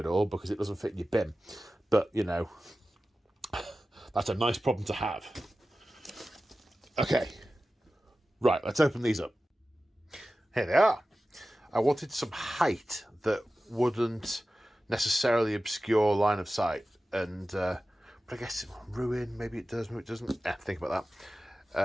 all because it doesn't fit in your bin. But, you know, that's a nice problem to have. Okay. Right, let's open these up. Here they are. I wanted some height that wouldn't necessarily obscure line of sight. And, but I guess ruin, maybe it does, maybe it doesn't. Think about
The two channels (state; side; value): normal; both; correlation 0.95